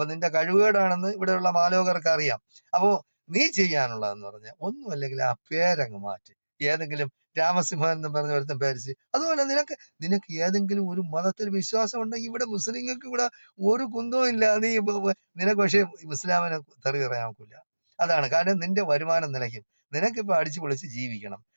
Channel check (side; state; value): both; inverted; correlation -1.00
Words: നിന്റെ കഴിവുകേടാണെന്ന് ഇവിടെയുള്ള മാലോകർക്ക് അറിയാം. അപ്പോ നീ ചെയ്യാനുള്ളതെന്ന് പറഞ്ഞാൽ ഒന്നും അല്ലെങ്കിൽ ആ പേരങ്ങ് മാറ്റി. ഏതെങ്കിലും രാമസിംഹൻ എന്ന് പറഞ്ഞ ഒരുത്തൻ പേരിച്ച്. അതുപോലെ നിനക്ക് ഏതെങ്കിലും ഒരു മതത്തിൽ വിശ്വാസം ഉണ്ടെങ്കിൽ, ഇവിടെ മുസ്ലിങ്ങൾക്ക് ഇവിടെ ഒരു കുന്തവും ഇല്ല. നിനക്ക് പക്ഷേ ഇസ്ലാമിനെ തെറി പറയാൻ നോക്കില്ല. അതാണ് കാരണം, നിന്റെ വരുമാനം നിലയ്ക്കും. നിനക്കിപ്പോ അടിച്ചു പൊളിച്ച് ജീവിക്കണം.